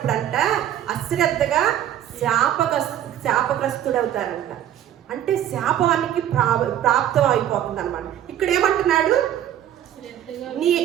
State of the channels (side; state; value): left; quieter; 11.1 dB